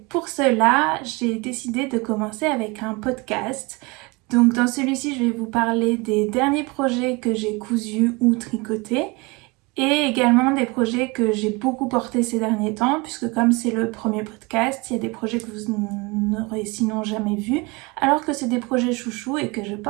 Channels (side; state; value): left; quieter; 26.2 dB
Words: cela, j'ai décidé de commencer avec un podcast. Donc dans celui-ci, je vais vous parler des derniers projets que j'ai cousus ou tricotés et également des projets que j'ai beaucoup portés ces derniers temps, puisque comme c'est le premier podcast, il y a des projets que vous n'aurez sinon jamais vus, alors que c'est des projets chouchous et que je